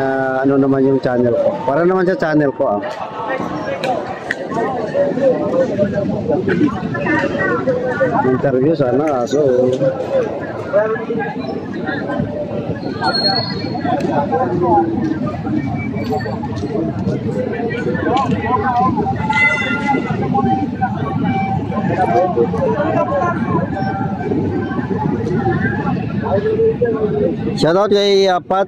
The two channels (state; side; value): identical; both; correlation 1.00